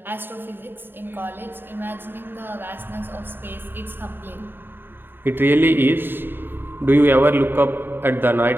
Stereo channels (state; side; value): late; left; 0.098 ms